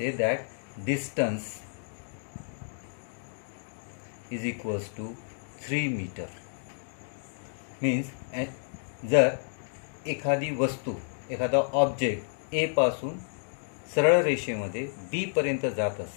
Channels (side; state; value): right; silent; digital silence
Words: that distance is equals to 3 meter. Means जर एखादी वस्तू, एखादा ऑब्जेक्ट ए पासून सरळ रेषेमध्ये बी पर्यंत जात